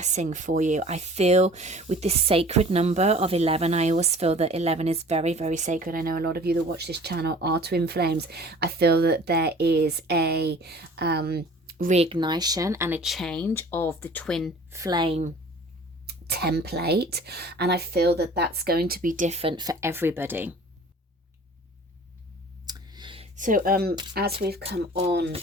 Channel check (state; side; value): normal; both; correlation 0.47